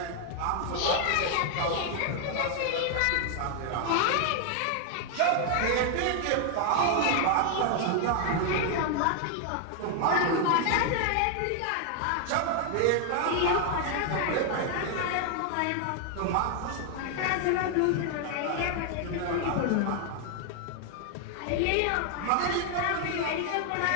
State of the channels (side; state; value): both; different; correlation 0.00